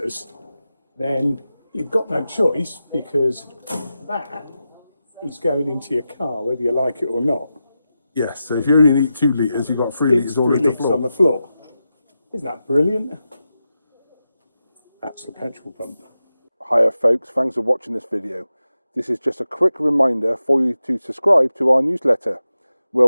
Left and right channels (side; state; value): both; inverted; correlation -0.91